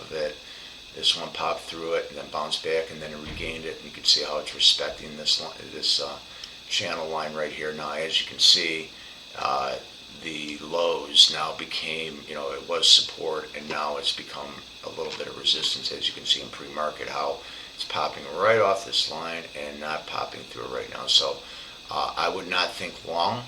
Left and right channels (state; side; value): identical; both; correlation 1.00